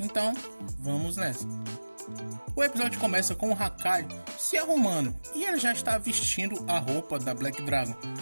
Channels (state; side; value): inverted; both; correlation -1.00